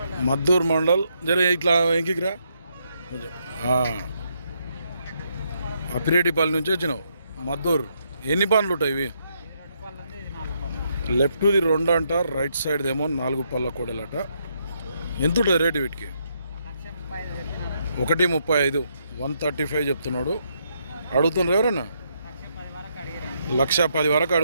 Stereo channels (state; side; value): inverted; both; correlation -0.77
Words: మద్దూరు మండల్. జర ఇట్లా ఎంకిరా కొంచెం. అప్పిరెడ్డిపల్లి నుంచి వచ్చినావు మద్దూరు. ఎన్ని పనులు ఉంటాయి ఇవి? లెఫ్ట్ది 2 అంట, రైట్ సైడ్ ఏమో 4 పళ్ళ కోడలట. ఎంత ఉంటుంది రేటు వీటికి? 1,35,000 135 చెప్తున్నాడు. అడుగుతుండ్రు ఎవరన్నా? 1,10,000 వరకు